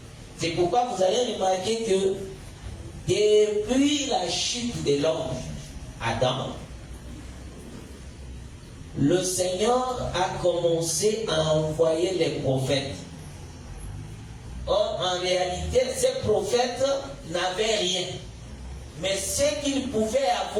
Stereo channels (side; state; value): both; identical; correlation 1.00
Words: C'est pourquoi vous allez remarquer que depuis la chute de l'homme, Adam, le Seigneur a commencé à envoyer les prophètes. Or, en réalité, ces prophètes n'avaient rien. Mais ce qu'ils pouvaient